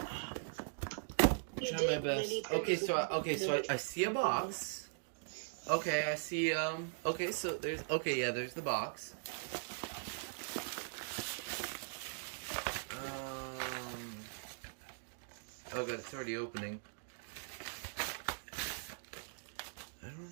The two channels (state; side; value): silent; left; digital silence